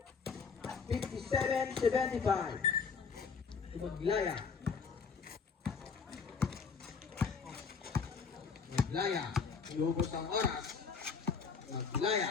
57-75. Maglaya. Iubos ang oras.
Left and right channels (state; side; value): quieter; right; 5.6 dB